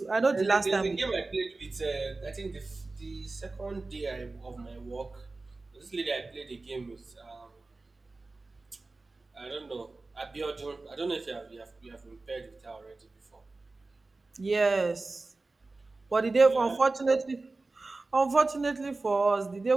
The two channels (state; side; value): quieter; left; 3.4 dB